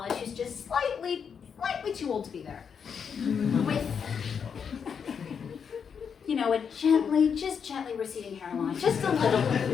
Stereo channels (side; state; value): right; quieter; 6.8 dB